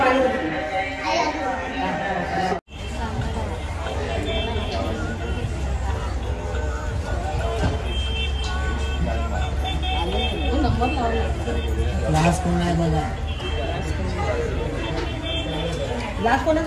लास्ट कोण आहे बघा. लास्ट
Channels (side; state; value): both; identical; correlation 1.00